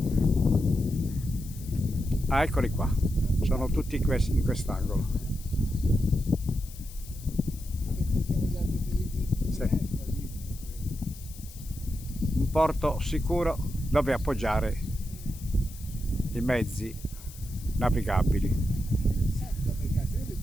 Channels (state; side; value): noise; left; hiss, 18 dB below the sound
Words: Ah, eccoli qua, sono tutti in quest'angolo. Sì. Un porto sicuro dove appoggiare i mezzi navigabili. C'è